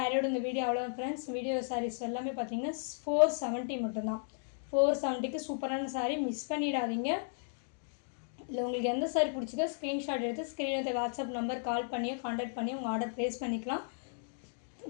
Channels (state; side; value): silent; right; digital silence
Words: இந்த வீடியோ அவ்வளவுதான் फ्रेंड्स. வீடியோ sarees எல்லாமே பாத்தீங்கன்னா 470 மட்டும் தான். 470க்கு சூப்பரான saree மிஸ் பண்ணிடாதீங்க. இல்ல உங்களுக்கு எந்த saree பிடிச்சிருக்கோ ஸ்கிரீன்ஷாட் எடுத்து ஸ்கிரீன்ல வாட்ஸ்அப் நம்பர் கால் பண்ணியோ कांटेक्ट பண்ணி உங்க ஆர்டர் பிளேஸ் பண்ணிக்கலாம்.